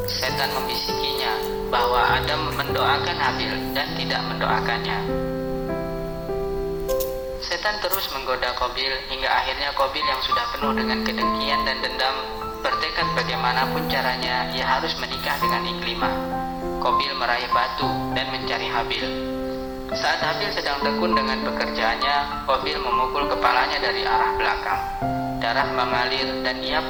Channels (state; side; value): identical; both; correlation 1.00